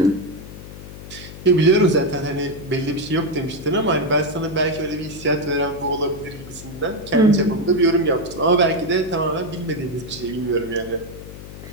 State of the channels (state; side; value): noise; left; hum, 14 dB below the sound